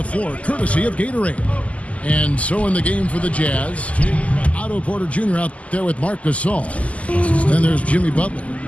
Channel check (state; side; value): late; right; 0.068 ms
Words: floor, courtesy of Gatorade. And so in the game for the Jazz, Otto Porter Jr. out there with Marc Gasol. Then there's Jimmy Butler.